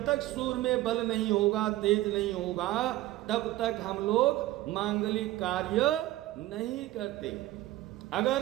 तक सूर्य में बल नहीं होगा, तेज नहीं होगा, तब तक हम लोग मांगलिक कार्य नहीं करते। अगर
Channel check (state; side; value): quieter; left; 16.2 dB